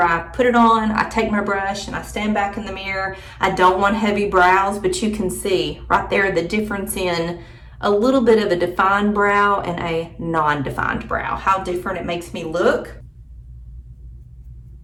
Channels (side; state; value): both; identical; correlation 1.00